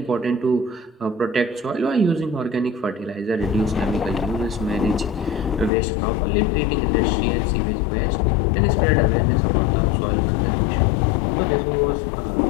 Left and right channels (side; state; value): right; drops out; at 5.7 s